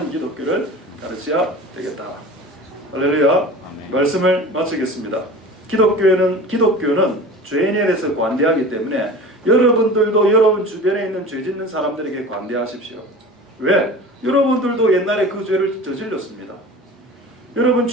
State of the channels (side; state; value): both; normal; correlation 0.37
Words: 기독교를 가르쳐야 되겠다. 할렐루야. 말씀을 마치겠습니다. 기독교는 죄인에 대해서 관대하기 때문에 여러분들도 여러분 주변에 있는 죄 짓는 사람들에게 관대하십시오. 왜? 여러분들도 옛날에 그 죄를 저질렀습니다. 여러분